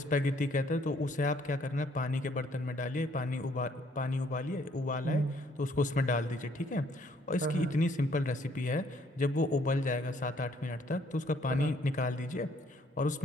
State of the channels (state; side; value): normal; both; correlation 0.65